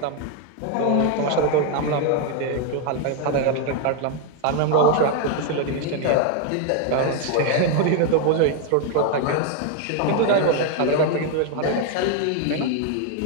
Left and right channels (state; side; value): different; both; correlation 0.00